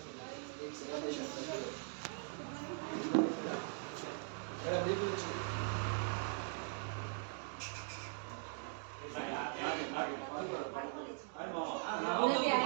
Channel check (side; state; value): left; silent; 50 dB below the other